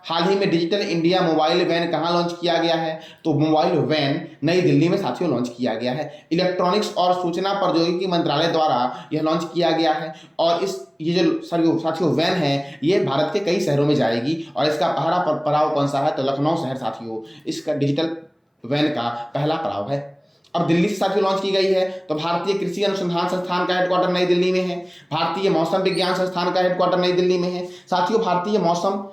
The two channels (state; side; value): identical; both; correlation 1.00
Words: हाल ही में डिजिटल इंडिया मोबाइल वैन कहाँ लॉन्च किया गया है? तो मोबाइल वैन नई दिल्ली में साथियों लॉन्च किया गया है। इलेक्ट्रॉनिक्स और सूचना प्रौद्योगिकी मंत्रालय द्वारा यह लॉन्च किया गया है। और ये जो साथियों वैन है ये भारत के कई शहरों में जाएगी। और इसका पहला पड़ाव कौन सा है? तो लखनऊ शहर साथियों इसका डिजिटल वैन का पहला पड़ाव है। अब दिल्ली से साथियों लॉन्च की गई है। तो भारतीय कृषि अनुसंधान संस्थान का हेडक्वार्टर नई दिल्ली में है। भारतीय मौसम विज्ञान संस्थान का हेडक्वार्टर नई दिल्ली में है साथियों। भारतीय मौसम